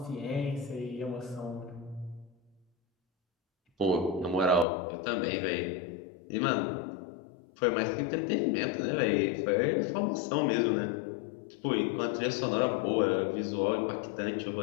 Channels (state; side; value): drops out; right; at 4.7 s